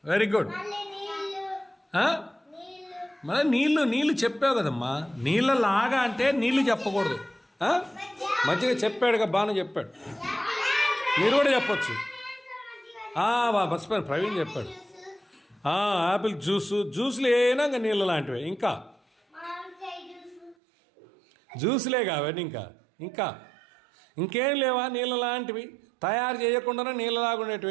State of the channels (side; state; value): left; drops out; at 20.6 s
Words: వెరీ గుడ్. మరి నీళ్ళు చెప్పావు కదమ్మా. నీళ్ళలాగా అంటే నీళ్ళు చెప్పకూడదు. మజ్జిగ చెప్పాడుగా, బాగా చెప్పాడు. మీరు కూడా చెప్పచ్చు. మర్చిపోయాను, ప్రవీణ్ చెప్పాడు. యాపిల్ జ్యూస్లు ఏనా ఇంకా నీళ్ళ లాంటివి. ఇంకా జ్యూస్లేగా అవన్నీ. ఇంకా ఇంకేం లేవా నీళ్ళ లాంటివి తయారు చేయకుండా నీళ్ళలాగా